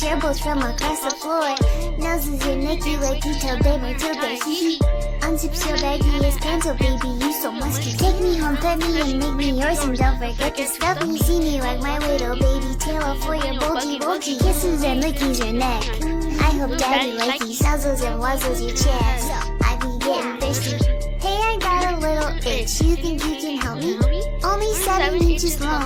your bolts from across the floor. Noses your neck, you like detail, baby, till they hee. Unzips your baggiest pants, oh baby, you so musky. Take me home, pet me, and make me yours, and don't forget to stuff me. See me like my little baby tail for your bulgy kisses and lickies your neck. I hope daddy likes these nuzzles and wuzzles your chest. I be getting thirsty. Hey, I got a little itch. You think you can help me? Only 7 inches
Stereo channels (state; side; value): identical; both; correlation 1.00